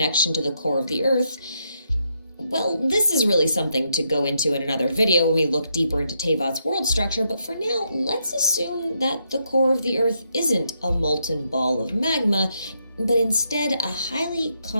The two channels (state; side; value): inverted; both; correlation -0.79